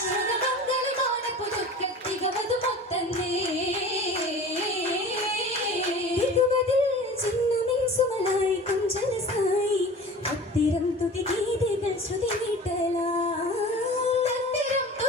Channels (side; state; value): both; normal; correlation 0.39